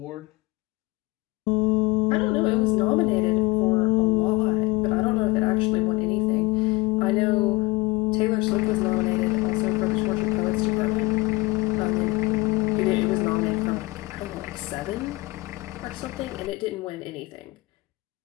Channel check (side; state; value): right; quieter; 22.2 dB